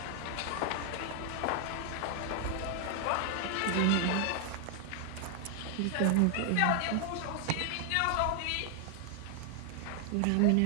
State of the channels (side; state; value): both; different; correlation 0.00